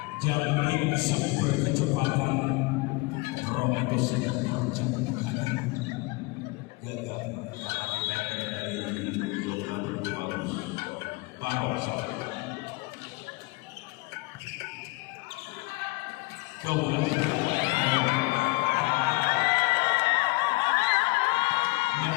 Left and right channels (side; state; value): right; quieter; 24.6 dB